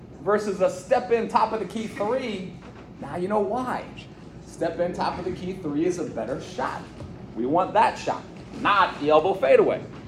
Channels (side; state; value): both; identical; correlation 1.00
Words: versus a step in top of the key 3, now you know why. Step in top of the key 3 is a better shot. We want that shot, not the elbow fadeaway.